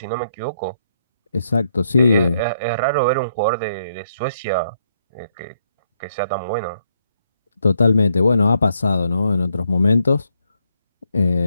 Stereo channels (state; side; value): inverted; both; correlation -0.75